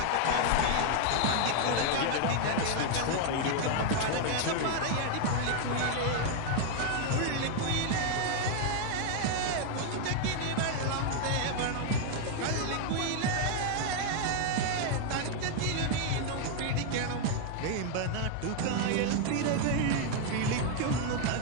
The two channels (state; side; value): different; both; correlation 0.00